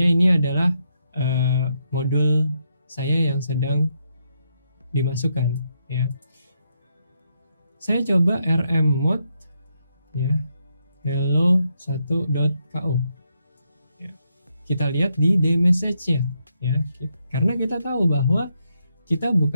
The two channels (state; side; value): inverted; both; correlation -0.79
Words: ini adalah modul saya yang sedang dimasukkan, ya. Saya coba rm mode, ya, hello1.ko, ya. Kita lihat di dmessage-nya, ya, karena kita tahu bahwa kita